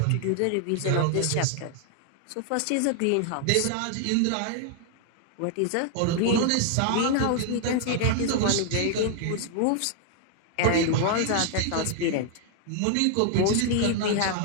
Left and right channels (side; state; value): both; different; correlation 0.00